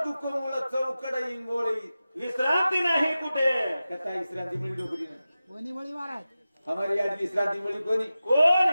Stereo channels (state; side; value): inverted; both; correlation -0.94